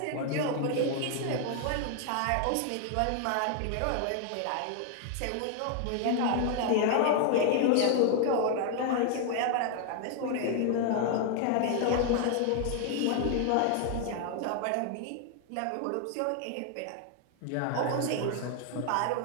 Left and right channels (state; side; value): different; both; correlation 0.00